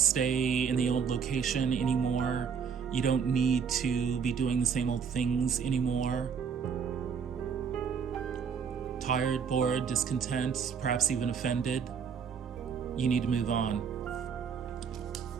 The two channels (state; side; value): quieter; left; 6.6 dB